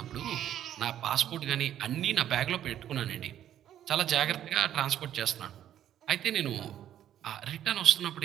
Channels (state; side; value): quieter; left; 11.1 dB